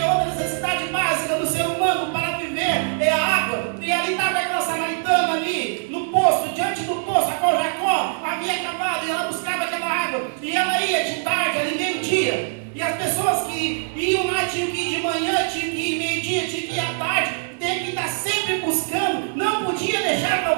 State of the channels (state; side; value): silent; left; digital silence